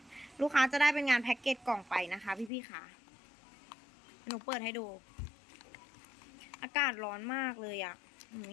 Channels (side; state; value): right; drops out; at 2.5 s